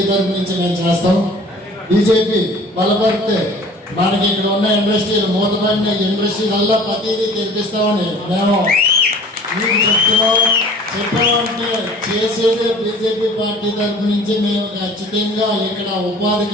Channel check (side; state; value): both; normal; correlation 0.47